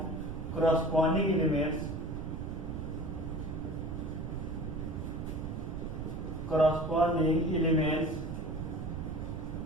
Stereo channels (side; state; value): right; noise; rumble, 5 dB below the sound